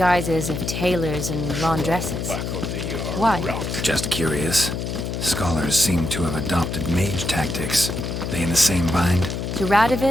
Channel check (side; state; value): left; noise; hum, 4 dB below the sound